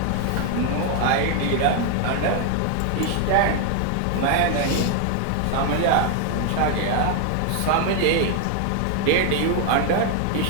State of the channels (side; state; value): both; different; correlation 0.00